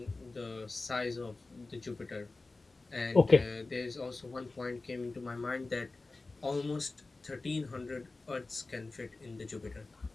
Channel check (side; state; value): right; quieter; 3.5 dB